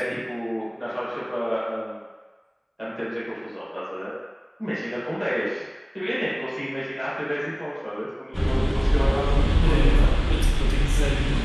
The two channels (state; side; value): identical; both; correlation 1.00